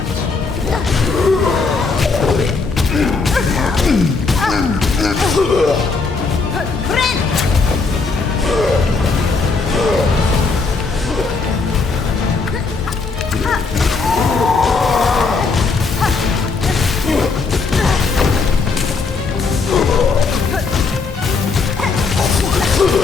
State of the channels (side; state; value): right; quieter; 4.3 dB